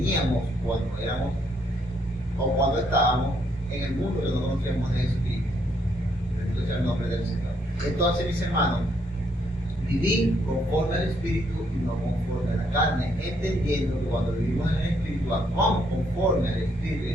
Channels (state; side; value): normal; both; correlation 0.72